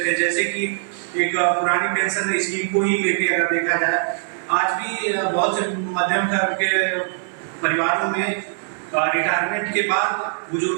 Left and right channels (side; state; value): left; silent; 57 dB below the other